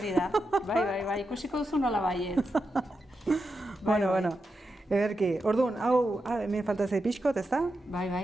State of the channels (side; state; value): both; normal; correlation 0.87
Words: da. Bai, ikusiko duzu nola baietz. Bueno. Ederki, orduan, hau, hemen falta zei pixkot, ez da?